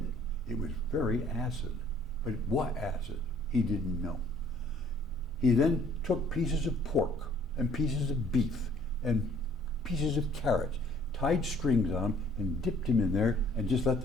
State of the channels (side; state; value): both; normal; correlation 0.59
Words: It was very acid. But what acid? He didn't know. He then took pieces of pork and pieces of beef and pieces of carrots, tied strings on them and dipped him in there and just let